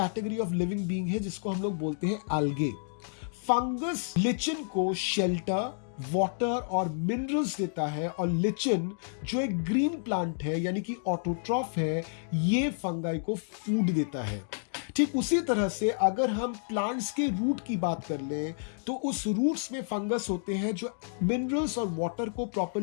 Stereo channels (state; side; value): silent; right; digital silence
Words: ऑफ लिविंग बींग है जिसको हम लोग बोलते हैं एल्गे। फंगस लिचन को शेल्टर, वाटर और मिनरल्स देता है, और लिचन जो एक ग्रीन प्लांट है यानी कि ऑटोट्रॉफ है, ये फंगाई को फूड देता है। ठीक उसी तरह से अगर हम प्लांट्स के रूट की बात कर लें तो उस रूट्स में फंगस होते हैं जो मिनरल्स और वाटर को